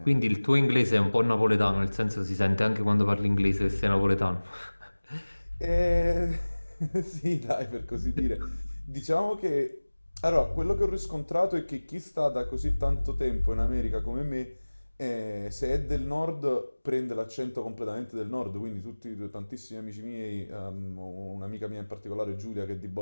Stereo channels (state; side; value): inverted; both; correlation -1.00